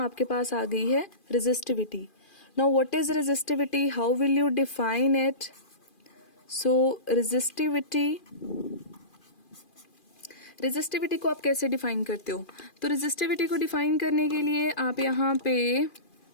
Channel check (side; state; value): right; late; 2.4 ms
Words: पास आ गई है resistivity. Now what is resistivity? How will you define it? So resistivity को आप कैसे डिफाइन करते हो? तो resistivity को डिफाइन करने के लिए आप यहाँ पे